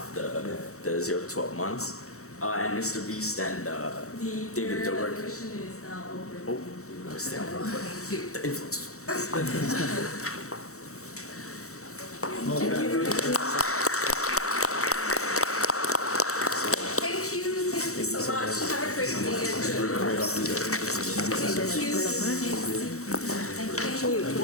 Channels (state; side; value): late; right; 0.64 ms